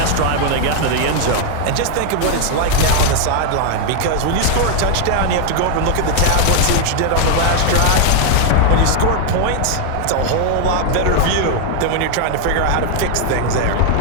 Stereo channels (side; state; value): both; different; correlation 0.00